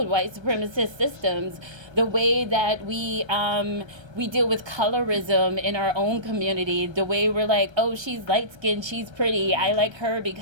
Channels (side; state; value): left; late; 1.3 ms